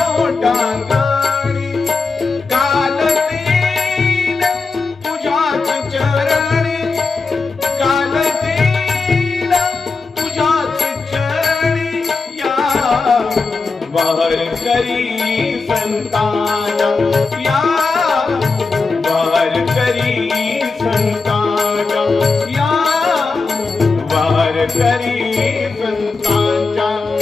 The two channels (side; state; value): right; quieter; 4.2 dB